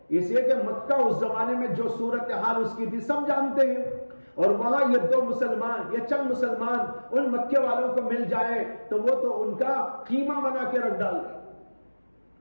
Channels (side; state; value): both; inverted; correlation -1.00